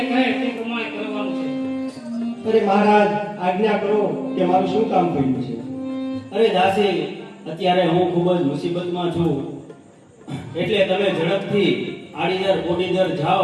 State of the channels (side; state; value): both; identical; correlation 1.00